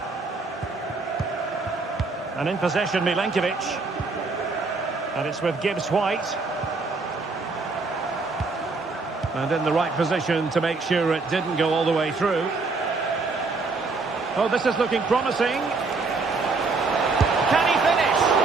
And in possession, Milenkovic. And it's with Gibbs White. And in the right position to make sure it didn't go all the way through. Oh, this is looking promising. Can he finish?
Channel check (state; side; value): quieter; left; 4.0 dB